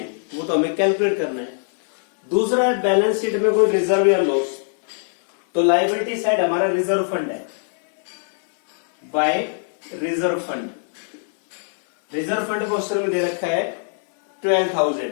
वो तो हमें कैलकुलेट करना है। दूसरा है बैलेंस शीट में कोई रिजर्व या लॉस, तो लायबिलिटी साइड हमारा रिजर्व फंड है by reserve fund. Reserve fund question में दे रखा है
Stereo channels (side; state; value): right; silent; digital silence